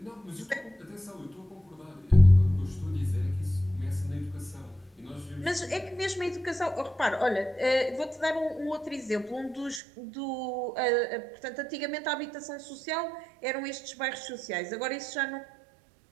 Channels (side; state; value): left; drops out; at 9.8 s